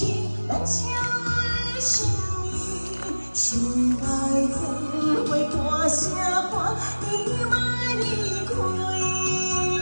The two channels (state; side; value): inverted; both; correlation -1.00